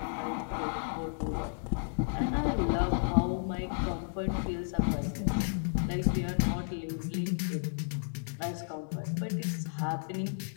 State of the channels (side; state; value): right; silent; digital silence